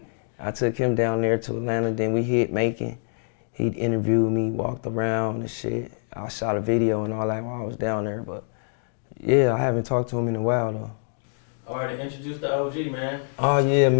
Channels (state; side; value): silent; right; digital silence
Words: I took him down there to Atlanta, then we hit Macon. He interviewed me, walked around and shit. I shot a video and all that while I was down there, but yeah, I haven't talked to him in a while though. All right, introduce the OG, man. Oh yeah,